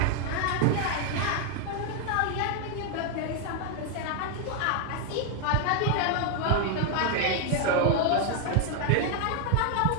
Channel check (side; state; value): both; different; correlation 0.00